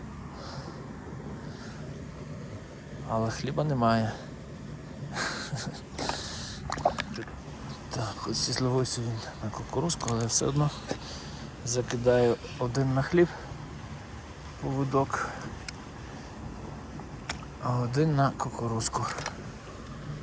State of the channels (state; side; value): identical; both; correlation 1.00